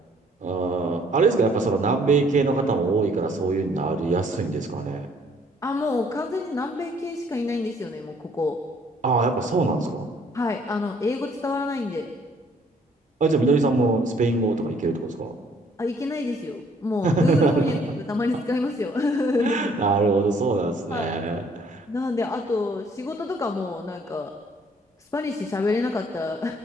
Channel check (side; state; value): both; normal; correlation 0.62